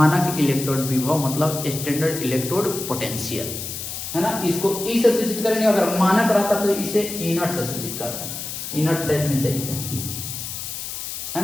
इलेक्ट्रोड विभव, मतलब स्टैंडर्ड इलेक्ट्रोड पोटेंशियल, है ना। इसको ई से सूचित करेंगे। अगर मानक रहता तो इसे इनर्ट से सूचित करते हैं। इनर्ट दैट मींस इसे, है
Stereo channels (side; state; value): left; noise; hiss, 7 dB below the sound